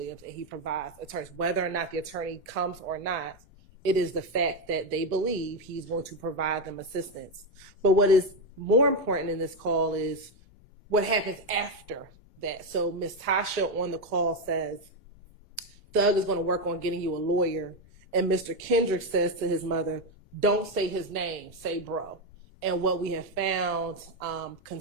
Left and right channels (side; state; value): left; noise; rumble, 29 dB below the sound